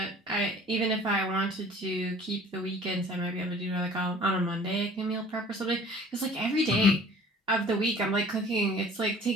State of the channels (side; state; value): both; normal; correlation 0.49